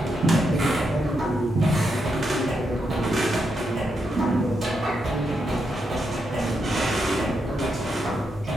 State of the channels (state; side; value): normal; both; correlation 0.82